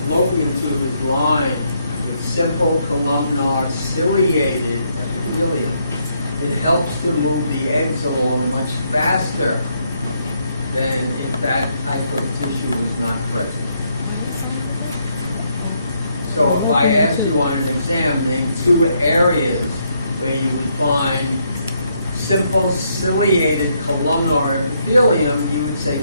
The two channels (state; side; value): inverted; both; correlation -0.74